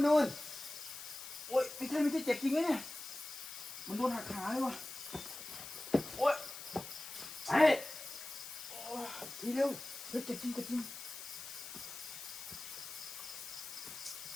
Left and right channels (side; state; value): left; noise; hiss, 10 dB below the sound